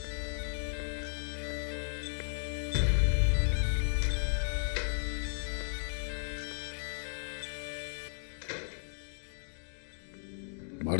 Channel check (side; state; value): right; silent; digital silence